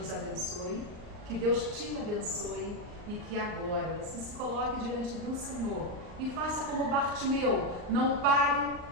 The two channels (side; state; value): left; late; 39 ms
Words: abençoe, que Deus te abençoe e que agora você se coloque diante do Senhor e faça como Bartimeu, não pare